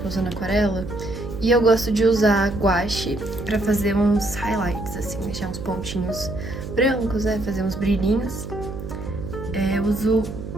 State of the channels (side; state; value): right; noise; hum, 9 dB below the sound